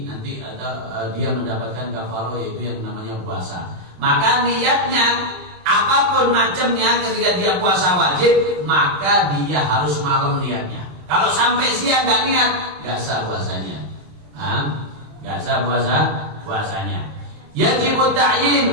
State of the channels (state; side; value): late; left; 27 ms